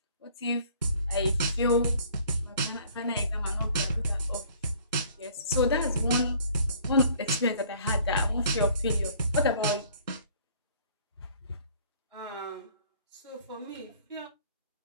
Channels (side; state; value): both; inverted; correlation -0.55